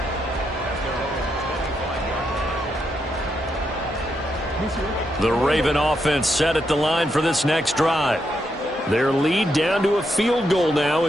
The Raven offense set at the line for this next drive. Their lead down to a field goal now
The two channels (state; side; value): normal; both; correlation 0.81